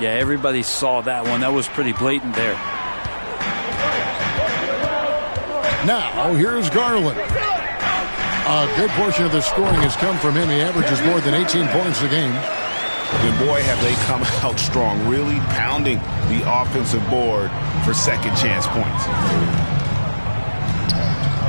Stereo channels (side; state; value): both; inverted; correlation -1.00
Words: everybody saw that one. That was pretty blatant there. Now, here's Garland. A good portion of the scoring has come from him. He averages more than 18 points a game. And boy, have they come out strong, really pounding the offensive board for second chance points.